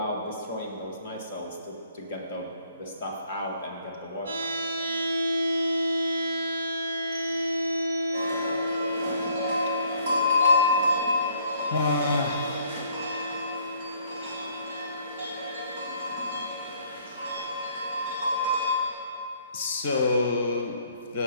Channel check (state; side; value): inverted; both; correlation -0.63